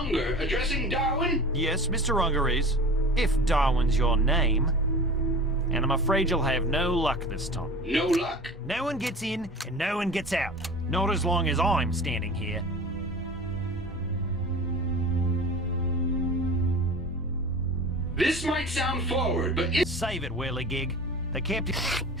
addressing Darwin? Yes, Mr. Unger is. If Darwin's your name. And I'm afraid you'll have no luck this time. No luck? No one gets in and no one gets out. Not as long as I'm standing here. This might sound forward, but Save it, whirligig. The captain...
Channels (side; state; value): both; normal; correlation 0.37